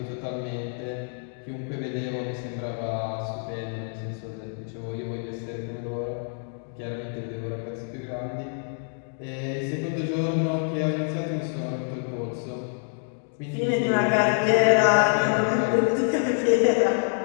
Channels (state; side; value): silent; right; 60 dB below the other